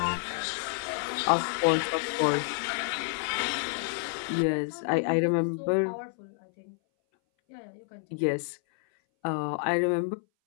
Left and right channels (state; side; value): silent; right; 58 dB below the other